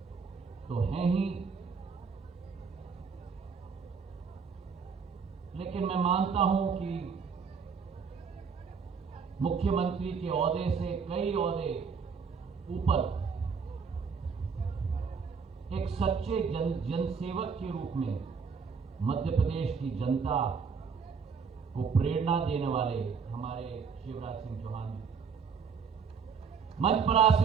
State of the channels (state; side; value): quieter; left; 5.8 dB